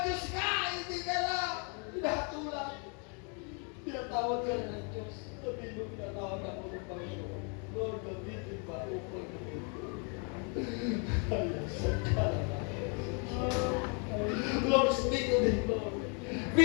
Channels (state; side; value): quieter; right; 37.3 dB